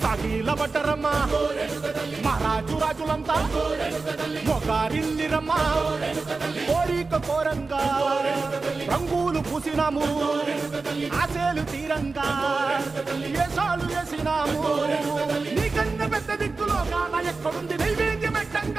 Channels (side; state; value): left; quieter; 4.0 dB